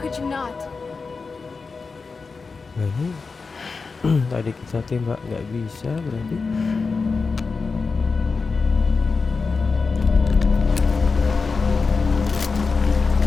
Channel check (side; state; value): right; quieter; 4.5 dB